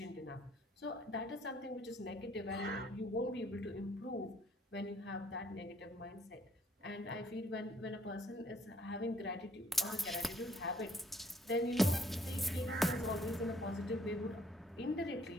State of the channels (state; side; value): normal; both; correlation 0.63